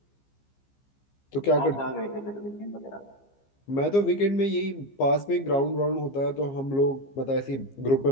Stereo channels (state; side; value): late; right; 15 ms